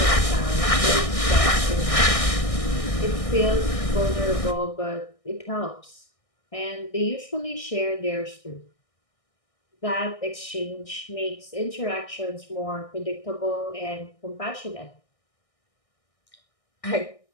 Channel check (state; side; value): late; right; 1.6 ms